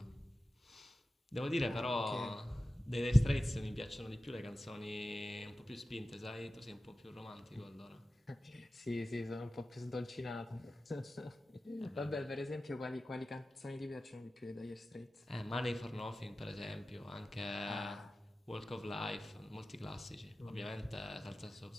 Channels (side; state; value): both; normal; correlation 0.95